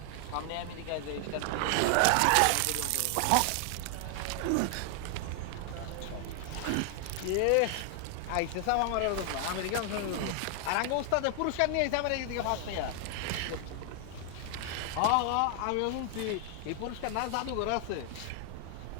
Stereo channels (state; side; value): different; both; correlation 0.00